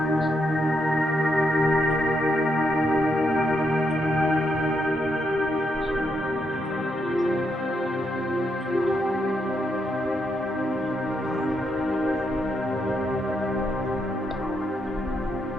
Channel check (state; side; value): normal; both; correlation 0.80